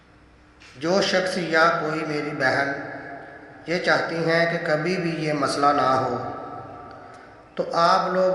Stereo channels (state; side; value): identical; both; correlation 1.00